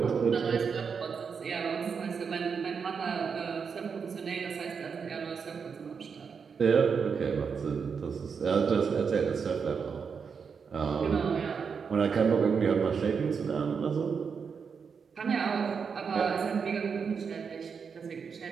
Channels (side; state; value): left; quieter; 6.0 dB